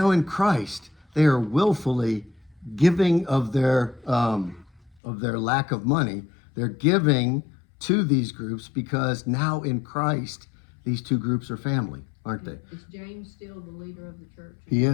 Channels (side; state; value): right; drops out; at 5.0 s